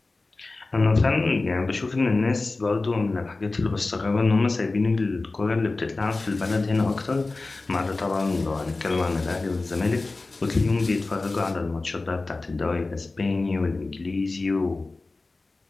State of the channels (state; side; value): quieter; right; 3.4 dB